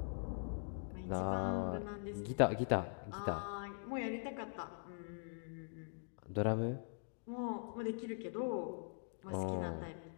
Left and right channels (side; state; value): right; silent; digital silence